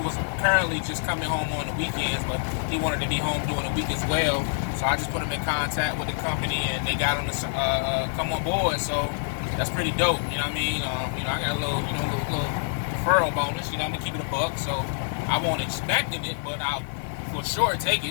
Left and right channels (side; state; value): right; silent; digital silence